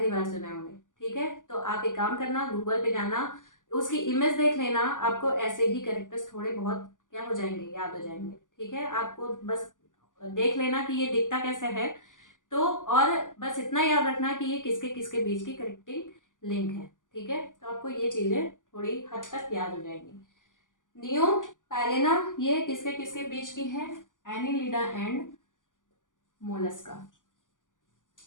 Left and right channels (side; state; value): right; late; 0.88 ms